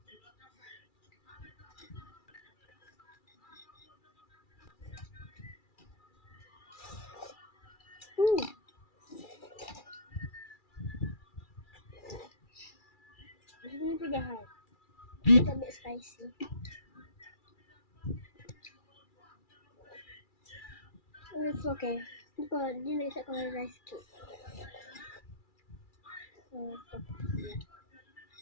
Ini pedas. Kita ambil spicy. It's okay. Dia nak isap kalau rice cake.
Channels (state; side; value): late; right; 2.3 ms